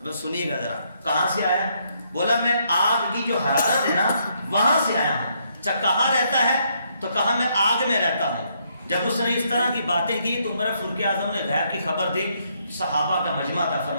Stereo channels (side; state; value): both; inverted; correlation -0.73